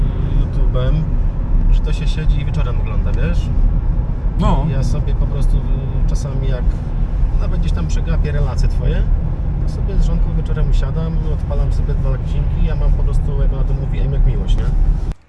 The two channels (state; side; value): identical; both; correlation 1.00